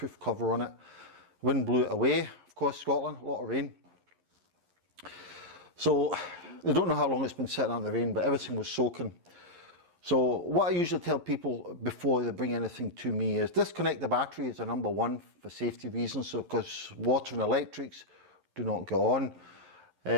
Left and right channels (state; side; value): late; left; 11 ms